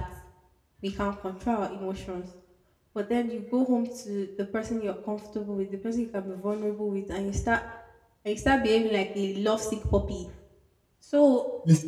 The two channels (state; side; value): identical; both; correlation 1.00